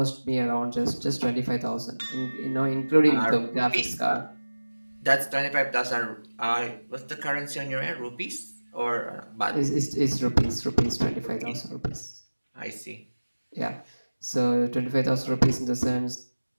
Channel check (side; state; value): both; inverted; correlation -1.00